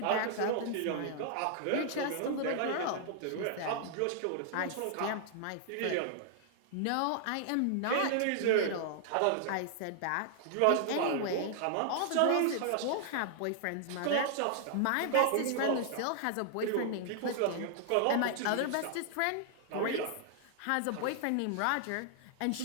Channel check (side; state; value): both; different; correlation -0.01